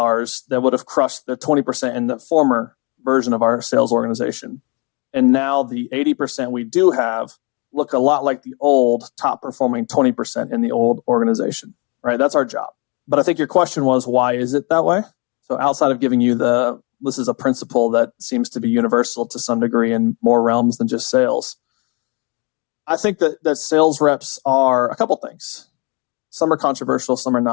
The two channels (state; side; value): quieter; right; 31.3 dB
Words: that would have crushed the 20% in the former version of our sales organization. And now the 80% we do have look a lot like the old top performing 20% in the old organization, right? That's our job. But I think your question was, why is it that way? So outside of giving you this is a principle that seems to be universal to some degree in more realms than just sales. I think that sales reps are a couple things. Some are controversial, some are